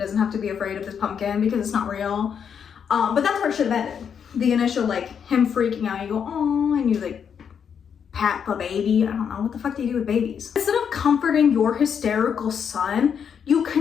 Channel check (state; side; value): quieter; right; 7.4 dB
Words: have to be afraid of this pumpkin because it's not real. But that's where it should have ended. The initial like him freaking out, you go, oh, and you like pat the baby. I don't know, what the fuck do you do with babies? Instead of comforting your hysterical son, you